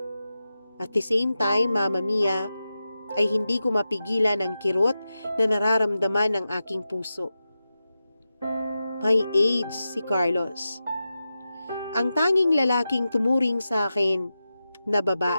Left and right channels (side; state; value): both; inverted; correlation -0.92